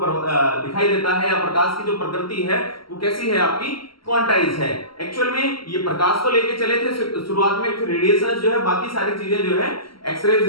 दिखाई देता है, या प्रकाश की जो प्रकृति है वो कैसी है, आपकी क्वांटाइज है। एक्चुअल में ये प्रकाश को लेके चले थे शुरुआत में, फिर रेडिएशन जो है, बाकी सारी चीजें जो है, एक्सरेज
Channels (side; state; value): right; late; 0.74 ms